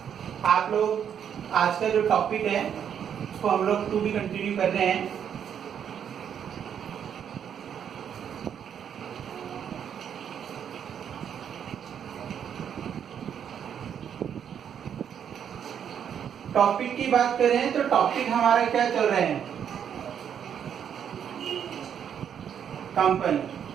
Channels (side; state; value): left; quieter; 8.5 dB